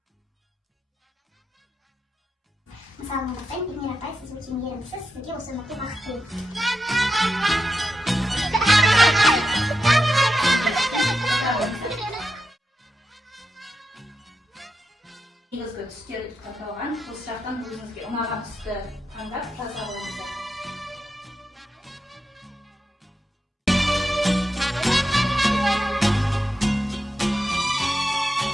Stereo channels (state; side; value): normal; both; correlation 0.87